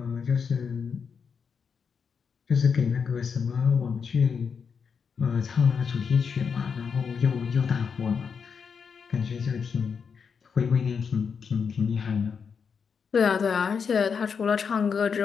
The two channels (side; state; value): right; quieter; 6.2 dB